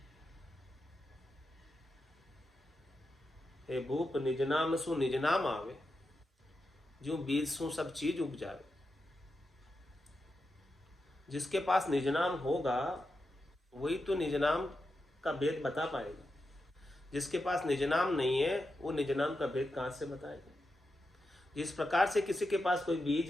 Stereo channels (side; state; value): both; normal; correlation 0.88